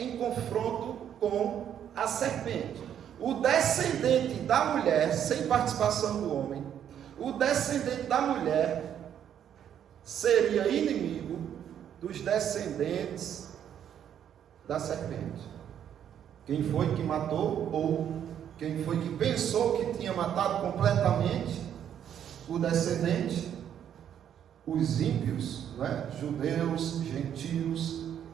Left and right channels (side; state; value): left; quieter; 9.5 dB